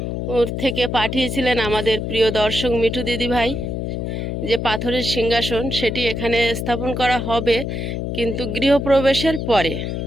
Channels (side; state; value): left; noise; hum, 3 dB below the sound